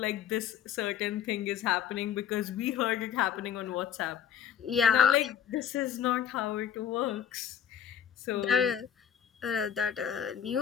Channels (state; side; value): quieter; right; 9.0 dB